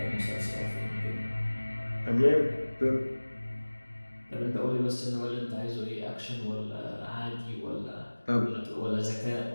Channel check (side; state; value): both; inverted; correlation -1.00